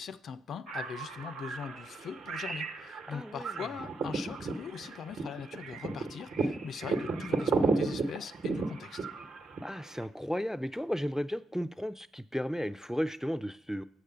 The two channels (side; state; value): both; normal; correlation 0.83